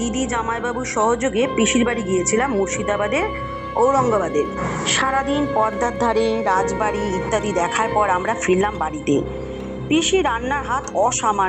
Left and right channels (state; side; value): identical; both; correlation 1.00